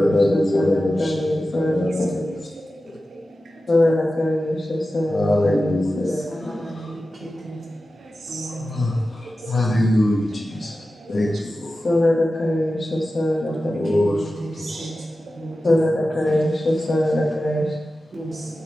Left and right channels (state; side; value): normal; both; correlation 0.94